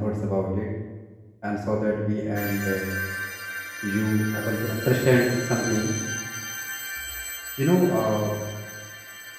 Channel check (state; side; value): identical; both; correlation 1.00